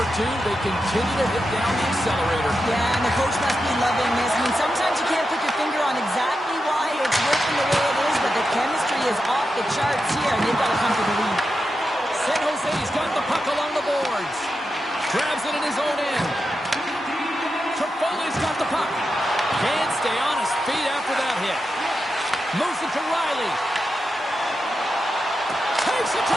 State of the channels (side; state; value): both; normal; correlation 0.88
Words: 2. They continue to hit down the accelerator. Yeah, and the coach must be loving this. I mean, sometimes you can't put your finger on exactly why it's working the way it is, but the chemistry is off the charts here, and they've got to come to the lead. San Jose's got the puck along the boards. Grabs it in his own end. Trifoli's got the puck. Can't stay on his feet after that hit. Moves it to Riley. Takes it